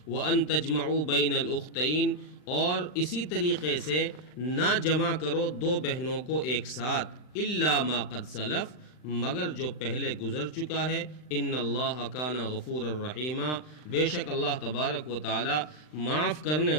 وَأَن تَجْمَعُوا بَيْنَ الْأُخْتَيْنِ اور اسی طریقے سے نہ جمع کرو دو بہنوں کو ایک ساتھ، إِلَّا مَا قَدْ سَلَفَ مگر جو پہلے گزر چکا ہے۔ ان اللہ کان غفور الرحیم بے شک اللہ تبارک و تعالی معاف کرنے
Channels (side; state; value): right; late; 39 ms